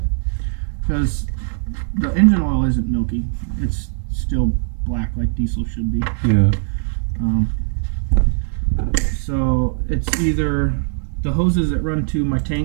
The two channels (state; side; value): silent; left; digital silence